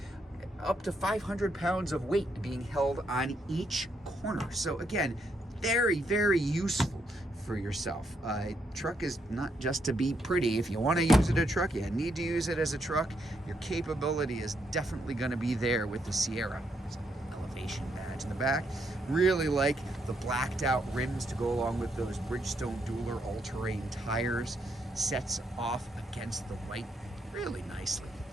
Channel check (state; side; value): normal; both; correlation 0.77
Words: up to 500 pounds of weight being held on each corner. So again, very, very useful for yourself. Truck is not just to be pretty. If you want to use it as a truck, you need to use it as a truck. Your capability is definitely going to be there with the Sierra. There's an elevation badge in the back. Really like the blacked out rims to go along with those Bridgestone Dueler all-terrain tires. Sets off against the white really nicely.